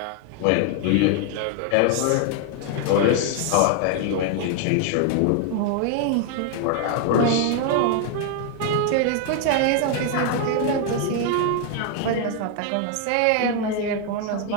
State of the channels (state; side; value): different; both; correlation 0.00